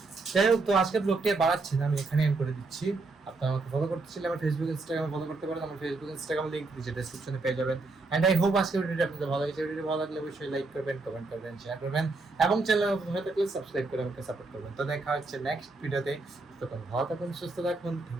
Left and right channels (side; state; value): left; quieter; 3.5 dB